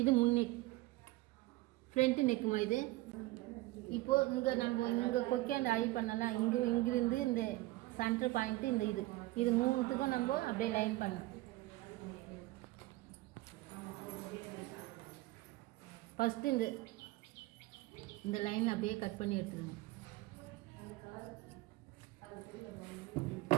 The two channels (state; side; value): quieter; left; 19.3 dB